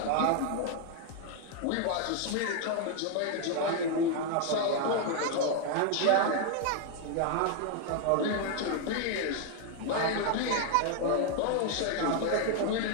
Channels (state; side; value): different; both; correlation 0.00